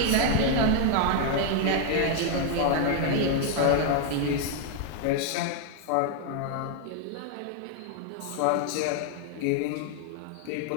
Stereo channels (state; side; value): different; both; correlation 0.00